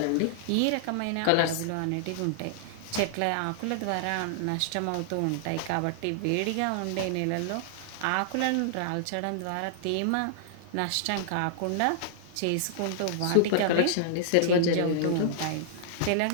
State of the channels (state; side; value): different; both; correlation -0.01